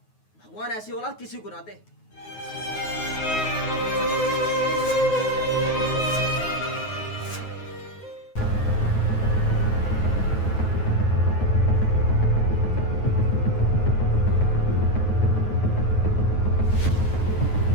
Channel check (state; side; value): late; right; 9.4 ms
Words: भगवान ऐसी औलाद किसी को ना दे।